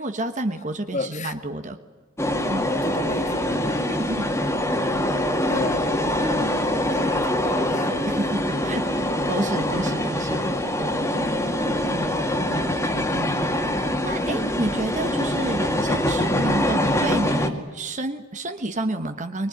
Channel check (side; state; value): both; normal; correlation 0.58